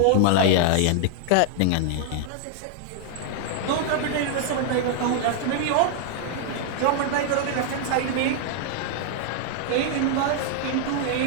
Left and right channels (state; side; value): different; both; correlation -0.01